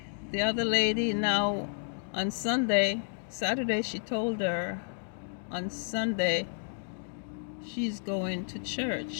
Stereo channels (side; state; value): right; silent; digital silence